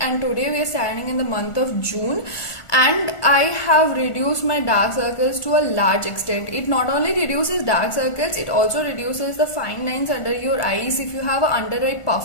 today we are standing in the month of June, and I have reduced my dark circles to a large extent. It not only reduces dark circles, it also reduces the fine lines under your eyes. If you have an under eye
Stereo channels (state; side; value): late; right; 1.4 ms